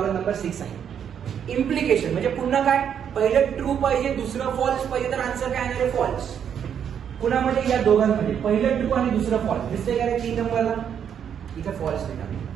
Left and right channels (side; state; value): left; quieter; 8.4 dB